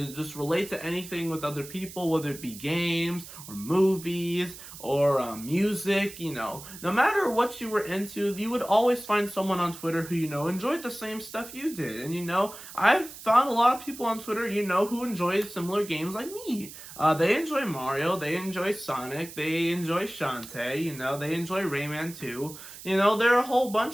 just relate to anything with other people, whether it be games, or movies, or music, no matter what you were into, you would always find someone on Twitter who, enjoyed the same stuff you did. And, I've found a lot of people on Twitter, who enjoy similar games like me. They enjoy Mario, they enjoy Sonic, they enjoy Shantae, they enjoy Rayman too. There are a whole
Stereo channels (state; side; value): noise; right; hiss, 14 dB below the sound